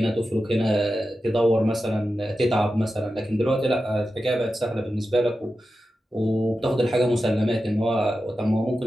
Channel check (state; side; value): normal; both; correlation 0.92